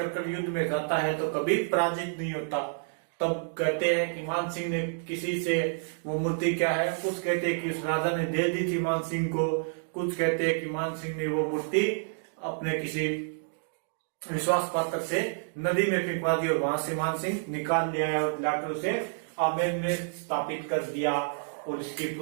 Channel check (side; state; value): left; silent; digital silence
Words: युद्ध में जाता है तो कभी पराजित नहीं होता। तब कहते हैं कि मानसिंह ने किसी से वो मूर्ति क्या है, कुछ कहते हैं कि उस राजा ने दे दी थी मानसिंह को, कुछ कहते हैं कि मानसिंह ने वो मूर्ति अपने किसी विश्वास पात्र से नदी में फेंकवा दी और वहां से मानसिंह निकाल लिया और लाकर उसे आमेर में स्थापित कर दिया और इसकी